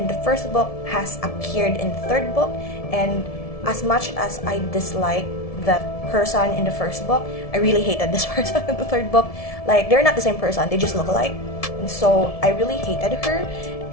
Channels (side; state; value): right; late; 1.7 ms